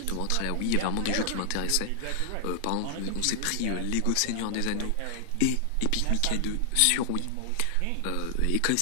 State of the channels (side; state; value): both; different; correlation -0.01